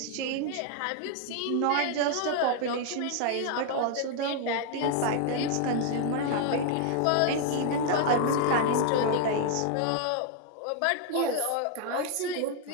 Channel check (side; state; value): both; different; correlation 0.00